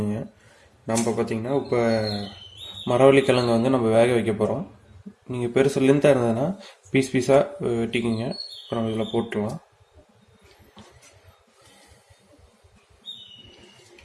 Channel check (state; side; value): identical; both; correlation 1.00